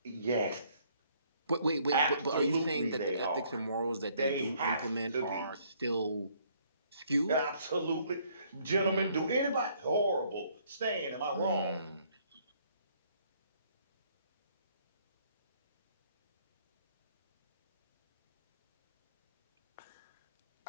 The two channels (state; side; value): inverted; both; correlation -0.65